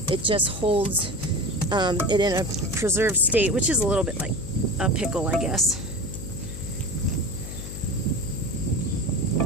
It just holds it in a preserved state, which is a little bit like a pickle, I guess.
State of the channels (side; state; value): left; noise; hum, 9 dB below the sound